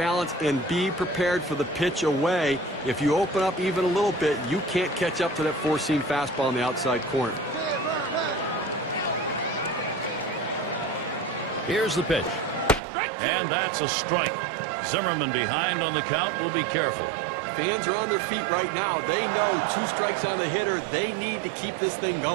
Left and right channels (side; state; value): left; drops out; at 12.8 s